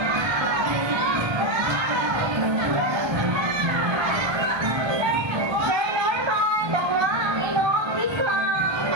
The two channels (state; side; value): late; left; 1.3 ms